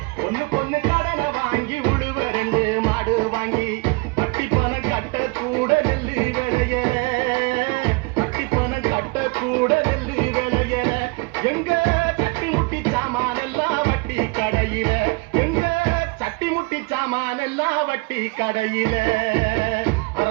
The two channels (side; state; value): left; quieter; 27.0 dB